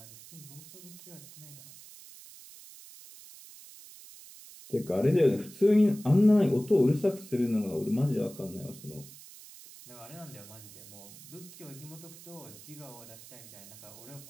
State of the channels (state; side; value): noise; right; hiss, 18 dB below the sound